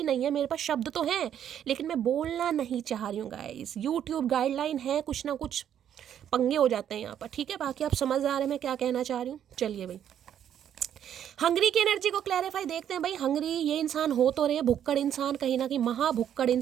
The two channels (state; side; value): quieter; left; 9.8 dB